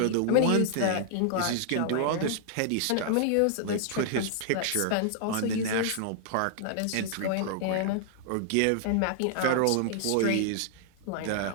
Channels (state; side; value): different; both; correlation -0.01